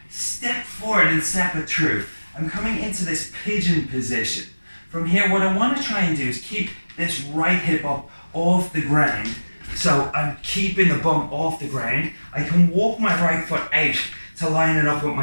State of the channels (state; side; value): inverted; both; correlation -1.00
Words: step forward and step it through. I'm coming into this pigeon position. From here, what I want to try and do is keep this right hip up off the ground. So I'm keeping the bum off the ground. I can walk my right foot out to line it up with